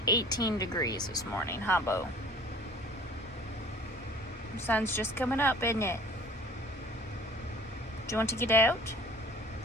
18 degrees this morning, huh, Bo? The sun's just coming up, isn't it? Do you want to get out?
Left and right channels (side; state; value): both; normal; correlation 0.48